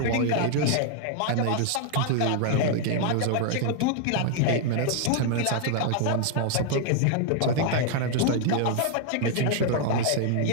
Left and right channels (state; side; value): different; both; correlation 0.00